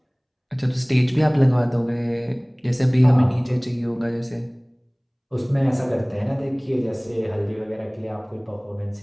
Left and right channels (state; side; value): identical; both; correlation 1.00